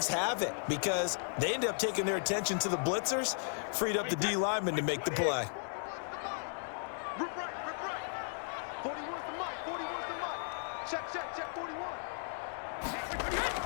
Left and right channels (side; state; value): right; silent; 54 dB below the other